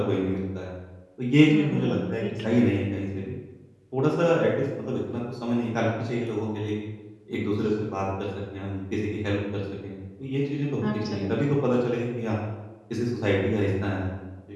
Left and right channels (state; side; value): identical; both; correlation 1.00